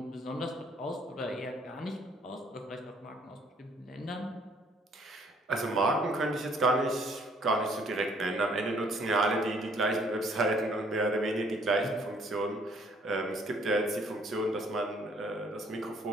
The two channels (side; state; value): both; normal; correlation 0.62